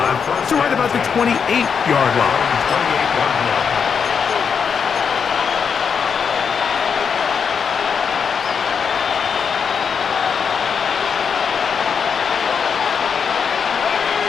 to right about the 28-yard line.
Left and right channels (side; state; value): right; quieter; 6.5 dB